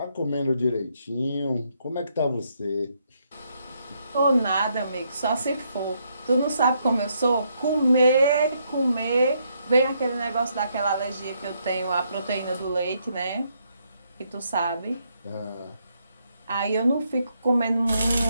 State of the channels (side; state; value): both; inverted; correlation -0.75